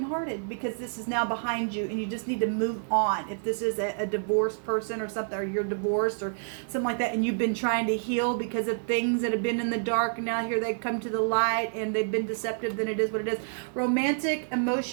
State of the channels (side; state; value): left; silent; 59 dB below the other